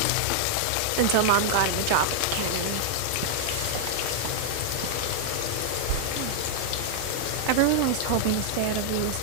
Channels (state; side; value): different; both; correlation -0.01